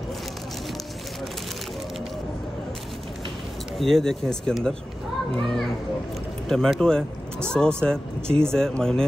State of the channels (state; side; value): normal; both; correlation 0.95